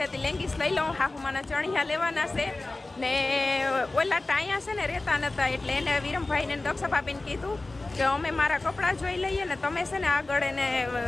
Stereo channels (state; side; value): quieter; right; 3.1 dB